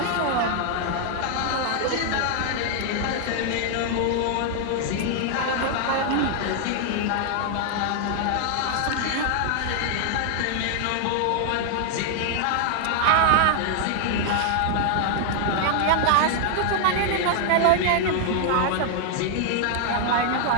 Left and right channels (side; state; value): both; different; correlation 0.00